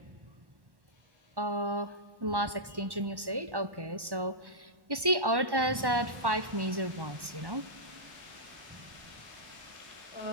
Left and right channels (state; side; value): late; left; 1.1 ms